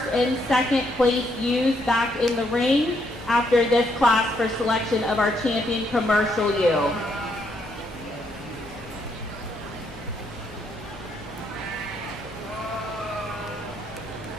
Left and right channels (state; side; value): normal; both; correlation 0.74